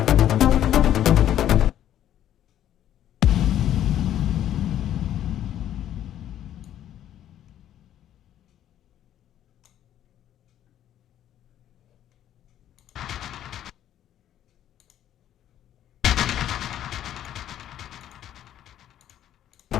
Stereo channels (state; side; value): quieter; right; 11.3 dB